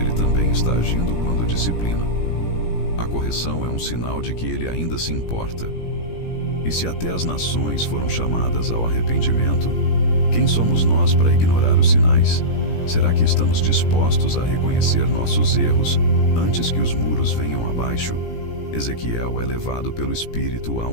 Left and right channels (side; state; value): right; late; 17 ms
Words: também está agindo quando disciplina. A correção é um sinal de que Ele ainda se importa. E se até as nações foram chamadas ao arrependimento, quem somos nós para ignorar os sinais? Será que estamos dispostos a reconhecer nossos erros antes que os muros venham abaixo? Ezequiel é levado pelo Espírito a